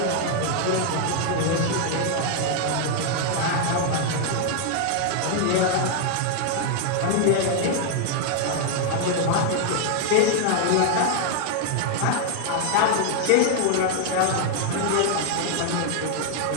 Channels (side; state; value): both; different; correlation 0.00